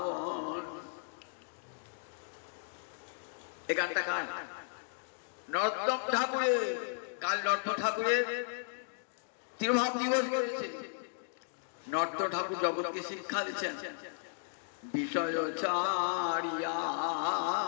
এই গানটা কার? নর্তম ঠাকুরের। কাল নর্ত ঠাকুরের তিরোভাব দিবস করেছে। নর্ত ঠাকুর জগৎকে শিক্ষা দিচ্ছেন, বিষয় ছাড়িয়া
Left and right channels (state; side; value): silent; right; digital silence